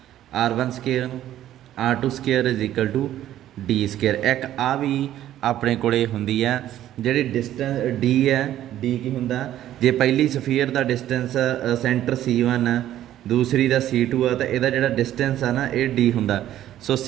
r1 square r2 square is equal to d square. एक आ भी अपने को होंगी है जी डिस्टेंस d है d की होंगे जे पहली सफीयर का डिस्टेंस सेंटर C1 है दूसरी का C2 है तो यदा जो डिस्टेंस है ना ये d होंगे। सो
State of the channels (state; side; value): quieter; left; 12.5 dB